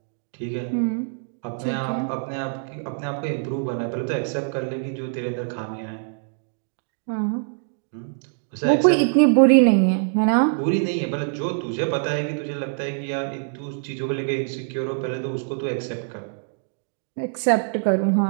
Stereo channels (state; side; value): silent; left; digital silence